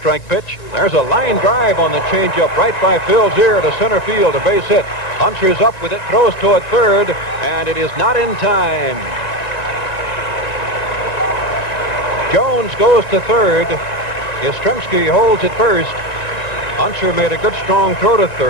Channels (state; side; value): late; right; 2.1 ms